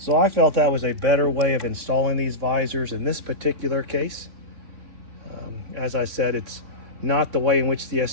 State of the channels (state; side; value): late; left; 3.7 ms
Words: I felt that was a better way of installing these visors in this particular case. As I said, it's not the way in which the